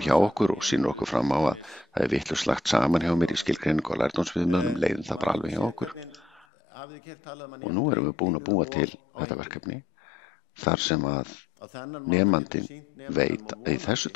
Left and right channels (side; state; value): right; drops out; at 6.5 s